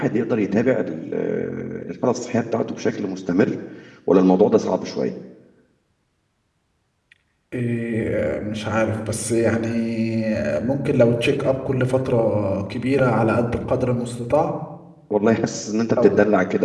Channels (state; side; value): identical; both; correlation 1.00